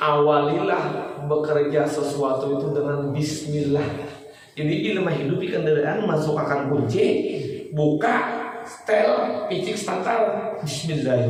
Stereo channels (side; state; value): both; identical; correlation 1.00